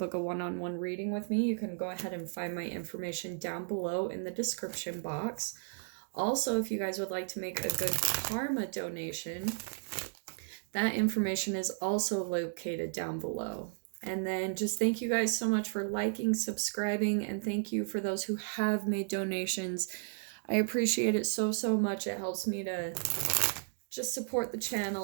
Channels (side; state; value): left; silent; digital silence